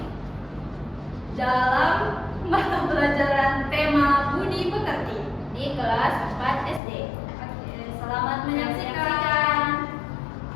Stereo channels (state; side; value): drops out; right; at 6.8 s